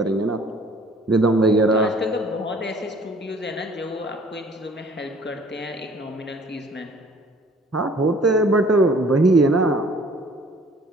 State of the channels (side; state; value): both; normal; correlation 0.54